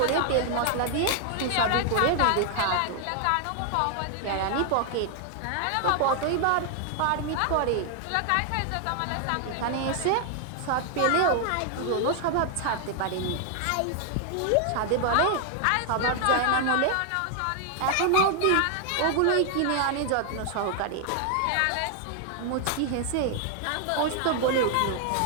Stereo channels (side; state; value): both; different; correlation 0.00